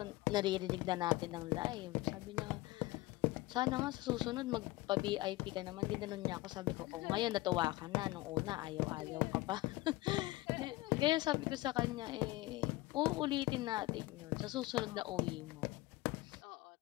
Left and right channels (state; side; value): quieter; right; 19.2 dB